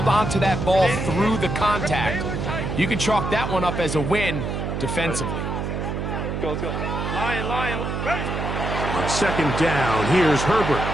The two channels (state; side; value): noise; right; hum, 3 dB below the sound